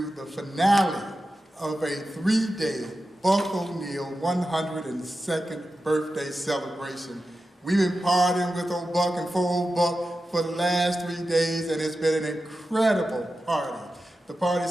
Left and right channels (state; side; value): normal; both; correlation 0.92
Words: the finale of a 3-day Buck O'Neil 102nd birthday celebration. We've been partying with old Buck and for old Buck for the last 3 days, and it's been an incredible party. The party